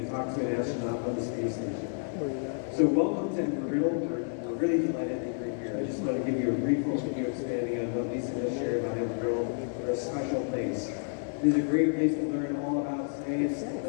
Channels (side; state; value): right; silent; digital silence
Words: to talk to an astronaut on the space station. So welcome to Riddle. We're really delighted that you're here. I just want to give you a brief overview expanding on what Lisa just shared about Embry. We're a special place. This is a great place to learn all about science,